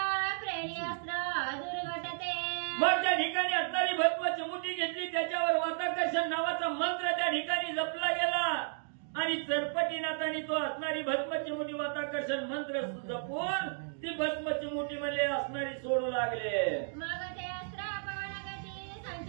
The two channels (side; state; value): left; silent; digital silence